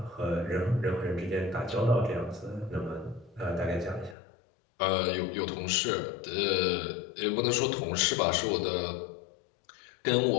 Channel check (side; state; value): right; drops out; at 4.2 s